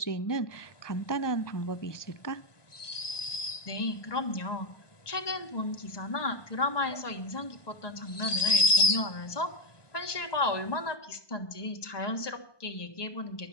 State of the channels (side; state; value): right; late; 1.2 ms